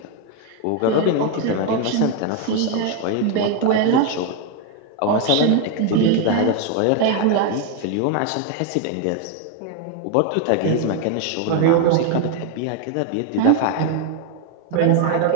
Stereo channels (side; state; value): both; different; correlation 0.01